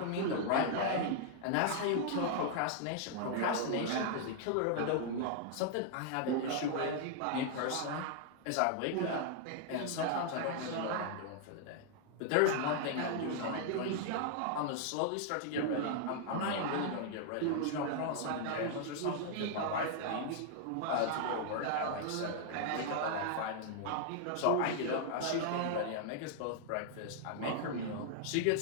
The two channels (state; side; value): different; both; correlation -0.01